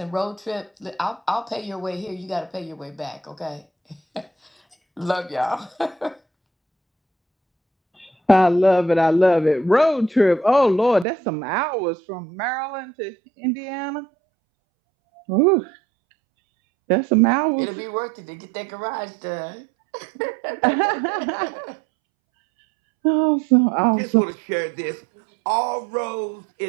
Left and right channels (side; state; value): left; drops out; at 11.1 s